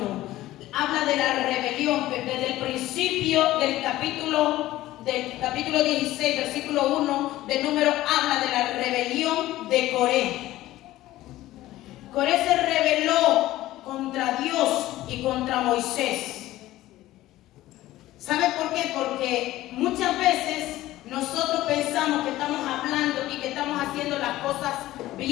Habla de la rebelión, desde el principio del capítulo 16, versículo 1 del número, habla de la rebelión de Coré. Coré se rebeló contra Dios y contra Moisés. ¿Sabe por qué? Porque muchas veces nosotros pensamos que estamos hablando y que estamos haciendo las cosas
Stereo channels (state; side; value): quieter; right; 15.8 dB